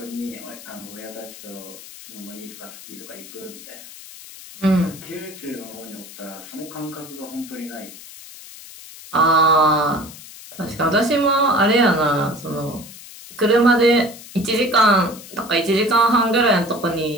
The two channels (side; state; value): left; noise; hiss, 16 dB below the sound